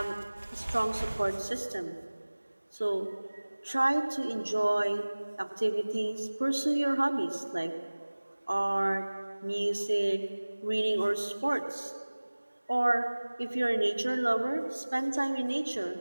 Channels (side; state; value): both; inverted; correlation -1.00